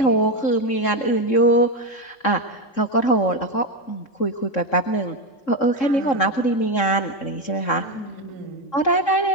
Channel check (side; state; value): right; late; 3.7 ms